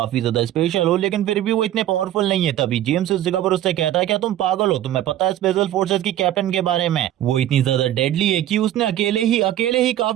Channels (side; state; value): left; quieter; 12.7 dB